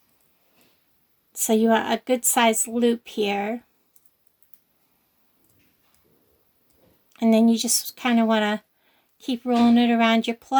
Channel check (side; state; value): both; identical; correlation 1.00